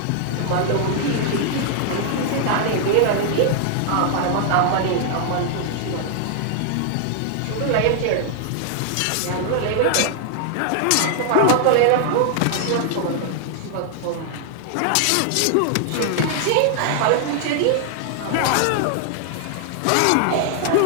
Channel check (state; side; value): different; both; correlation 0.00